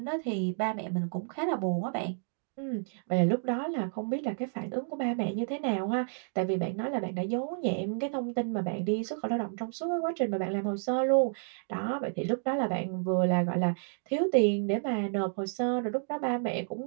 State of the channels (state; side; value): silent; left; digital silence